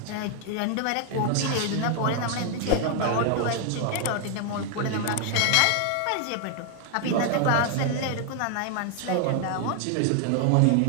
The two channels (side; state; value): both; different; correlation 0.00